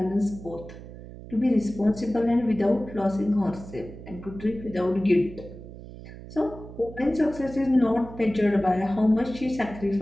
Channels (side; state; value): right; noise; hum, 14 dB below the sound